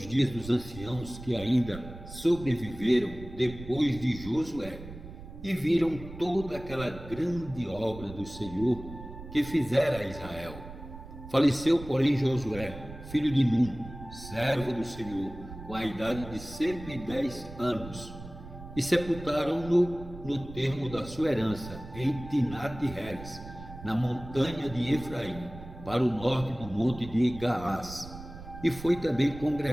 dias dos anciãos que ainda sobreviveram depois de Josué, e viram toda aquela grande obra do Senhor que fizera a Israel. Faleceu, porém, Josué, filho de Num, servo do Senhor, com a idade de 110 anos, e sepultaram-no no termo da sua herança, em Tinate-Heres, na montanha de Efraim, para o norte do monte de Gaás. E foi também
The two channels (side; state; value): right; noise; rumble, 14 dB below the sound